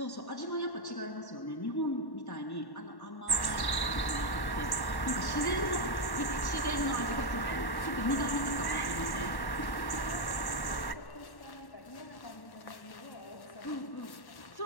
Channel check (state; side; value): late; right; 1.1 ms